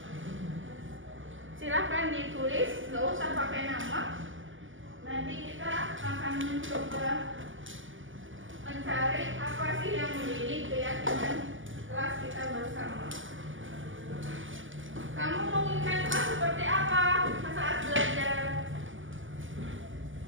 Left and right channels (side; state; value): left; late; 0.57 ms